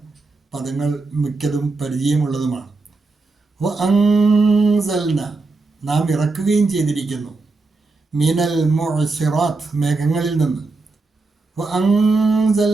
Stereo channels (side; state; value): left; quieter; 3.6 dB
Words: പദങ്ങൾ മിക്കതും പരിചയമുള്ളതുമാണ്. വഅൻസൽന, നാം ഇറക്കുകയും ചെയ്തിരിക്കുന്നു. മിനൽ മുഅ്സിറാത്ത്, മേഘങ്ങളിൽ നിന്ന്.